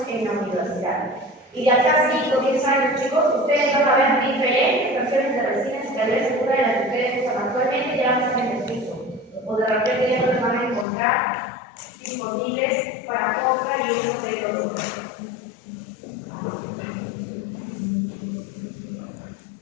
en la universidad. Y de acá 5 o 10 años, chicos, ustedes van a ver diferentes versiones de resinas y tal vez una de las que ustedes usan actualmente ya no están en el piso. O de repente ya no los van a encontrar disponibles para compra y uso de productos.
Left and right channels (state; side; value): drops out; right; at 10.9 s